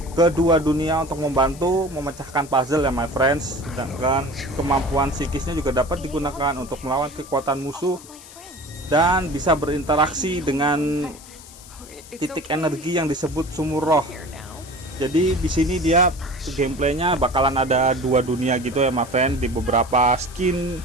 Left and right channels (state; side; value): noise; left; hiss, 19 dB below the sound